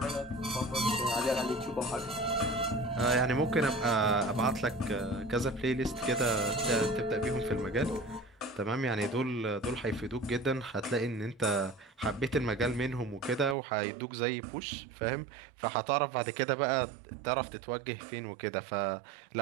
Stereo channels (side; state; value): left; drops out; at 13.6 s